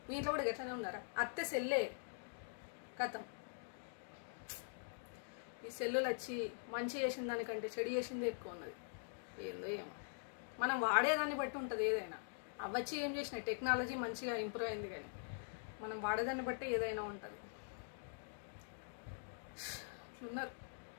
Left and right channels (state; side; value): silent; right; digital silence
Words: మీ ఇంట్లో కూడా గట్లనే ఉన్నారా? అత్తే సెల్లే కథం. ఈ సెల్లులు వచ్చి మంచి చేసిన దానికంటే చెడు చేసిందే ఎక్కువ ఉన్నది. ఏందో ఏమో, మనం వాడేదాన్ని బట్టి ఉంటుంది ఏదైనా. అవచ్చి ఏం చేసినాయి, టెక్నాలజీ మంచిగా ఇంప్రూవ్ అయింది, కానీ మనం వాడేదాన్ని బట్టి ఏదైనా ఉంటుంది. ఇట్లున్నారు.